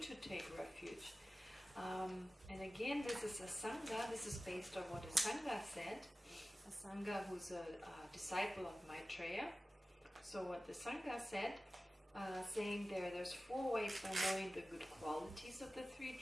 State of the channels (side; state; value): both; normal; correlation 0.96